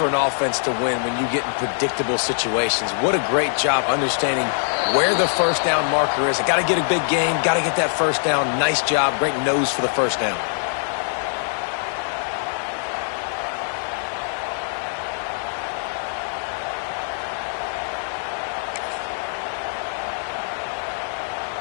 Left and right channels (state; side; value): silent; right; digital silence